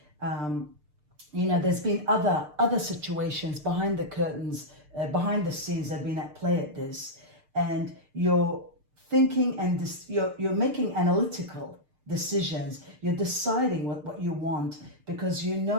You know, there's been other situations behind the curtains, behind the scenes that have been at play at this, and you're thinking and you're making analytical decisions. You're deciding what you want, because you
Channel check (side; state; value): left; late; 6.7 ms